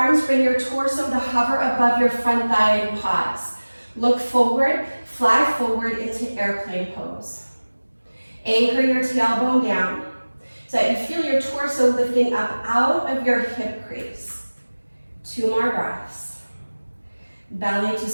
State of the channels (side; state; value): both; inverted; correlation -1.00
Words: bring your torso to hover above your front thigh and pause. Look forward, fly forward into airplane pose. Anchor your tailbone down so that you feel your torso lifting up out of your hip crease. 2 more breaths. Belly to